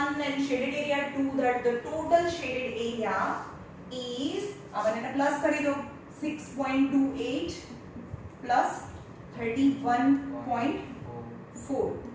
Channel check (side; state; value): both; identical; correlation 1.00